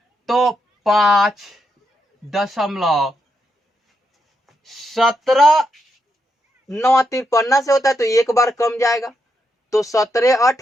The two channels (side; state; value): both; normal; correlation 0.82